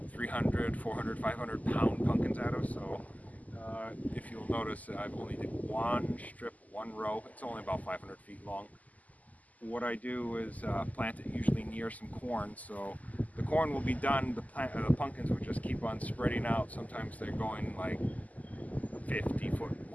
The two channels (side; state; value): right; late; 0.077 ms